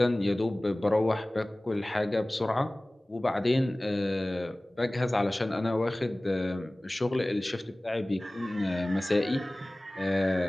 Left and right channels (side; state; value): both; normal; correlation 0.98